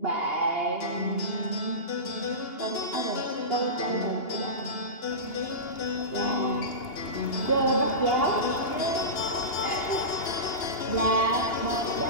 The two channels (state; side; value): late; right; 2.8 ms